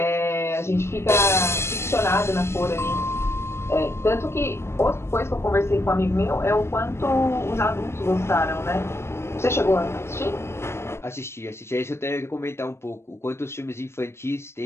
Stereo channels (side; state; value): right; late; 0.12 ms